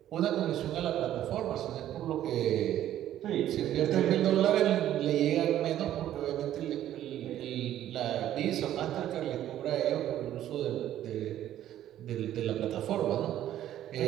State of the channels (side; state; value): left; quieter; 12.1 dB